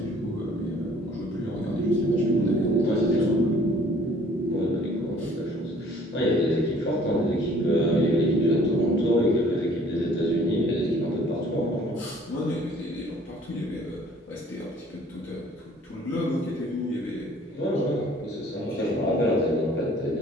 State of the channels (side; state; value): both; normal; correlation 0.56